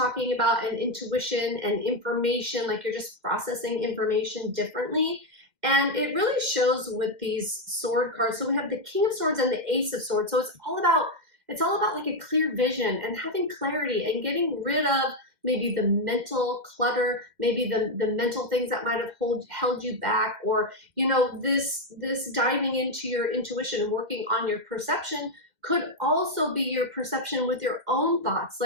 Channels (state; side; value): late; left; 2.1 ms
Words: about, and intuition and information, like you're just processing information differently. And it really shows with these sword cards. So we have the King of Swords and the Ace of Swords. So it's all about like a clear vision and having clarity and getting rid of maybe the mental clutter, maybe the mental things that might have held you back, or, you know, this diving into your intuition and working on your perception could also be your perception with your own thoughts.